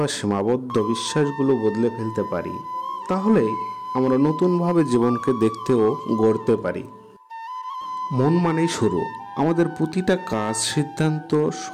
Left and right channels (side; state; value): both; identical; correlation 1.00